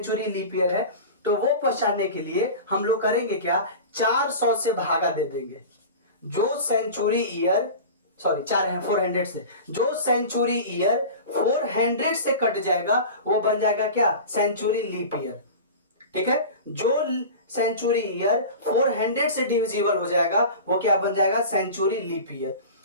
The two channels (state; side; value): inverted; both; correlation -0.33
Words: लीप ईयर है, तो वो पहचानने के लिए हम लोग करेंगे क्या, 400 से भागा दे देंगे। जो सेंचुरी ईयर, सॉरी 4 है 400 से, जो सेंचुरी ईयर 400 से कट जाएगा वो बन जाएगा क्या, सेंचुरी लीप ईयर। ठीक है, जो सेंचुरी ईयर 400 से डिविजिबल हो जाएगा वो क्या बन जाएगा, सेंचुरी लीप ईयर।